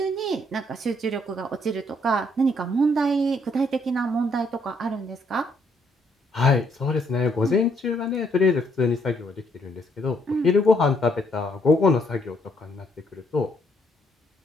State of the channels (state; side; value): normal; both; correlation 0.70